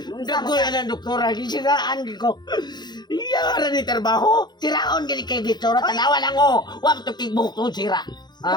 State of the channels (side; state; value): right; late; 0.21 ms